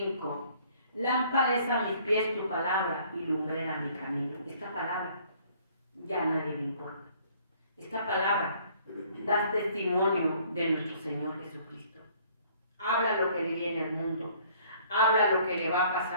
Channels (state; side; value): inverted; both; correlation -0.58